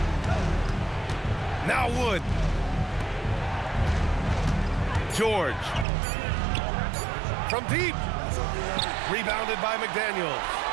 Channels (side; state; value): left; drops out; at 5.9 s